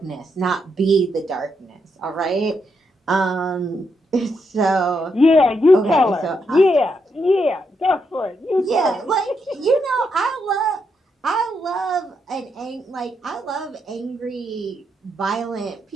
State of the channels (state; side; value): normal; both; correlation 0.80